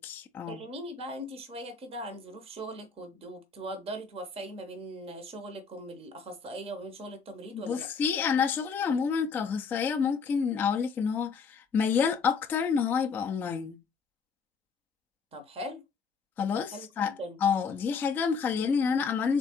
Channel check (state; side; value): quieter; right; 5.6 dB